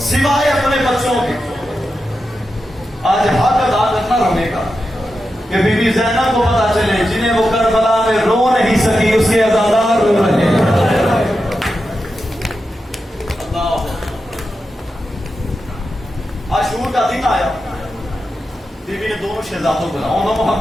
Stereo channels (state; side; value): normal; both; correlation 0.89